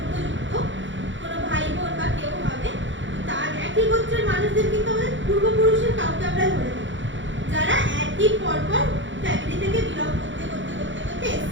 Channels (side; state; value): left; late; 0.55 ms